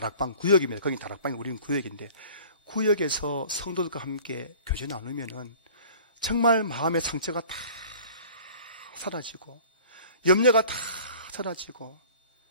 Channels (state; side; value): inverted; both; correlation -0.46